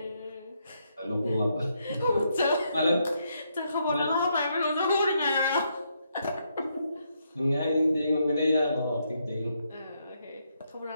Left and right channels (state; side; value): inverted; both; correlation -0.77